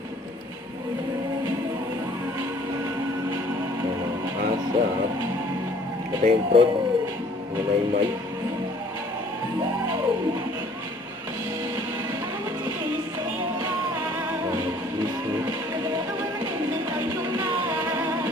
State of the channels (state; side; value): normal; both; correlation 0.56